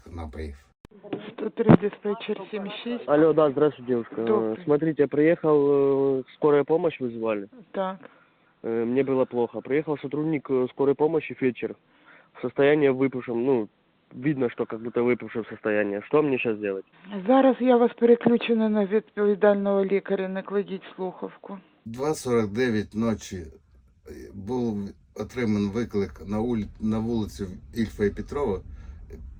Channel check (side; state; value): both; identical; correlation 1.00